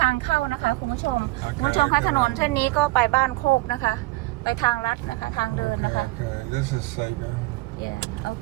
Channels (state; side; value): quieter; left; 20.7 dB